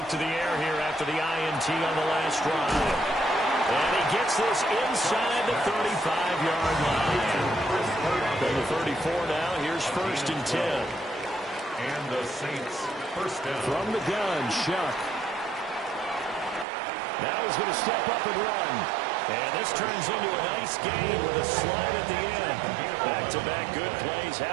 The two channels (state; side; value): drops out; left; at 16.7 s